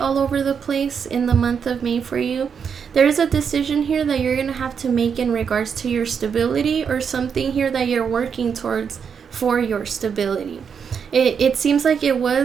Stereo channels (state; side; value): quieter; left; 6.8 dB